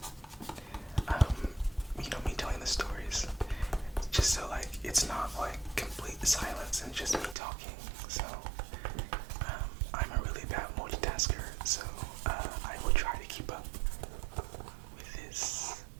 Me telling the stories, just so it's not complete silence and just me talking. So I'm a really bad multitasker, so I will try to keep up with this.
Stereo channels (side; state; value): left; drops out; at 7.4 s